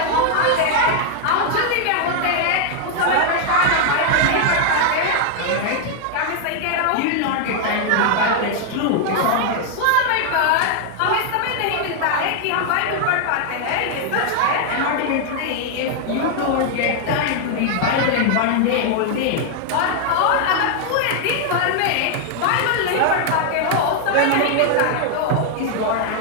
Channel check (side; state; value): both; different; correlation 0.00